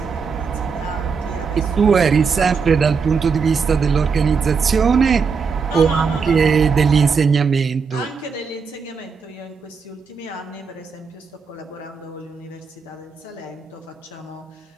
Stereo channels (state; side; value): quieter; left; 5.5 dB